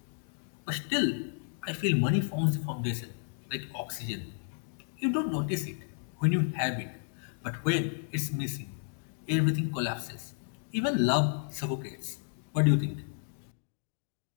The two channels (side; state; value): right; silent; digital silence